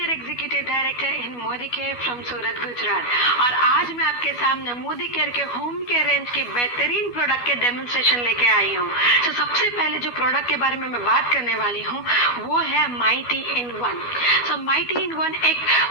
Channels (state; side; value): late; right; 12 ms